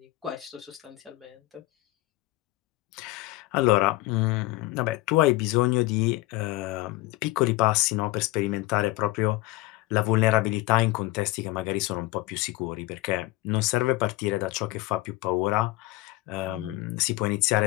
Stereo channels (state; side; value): quieter; right; 18.8 dB